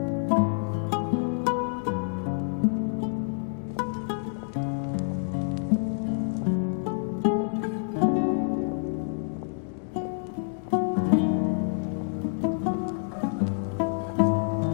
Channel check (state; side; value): silent; right; digital silence